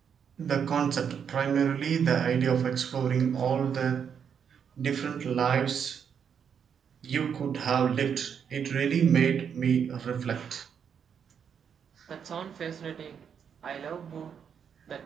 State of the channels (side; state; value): left; quieter; 7.5 dB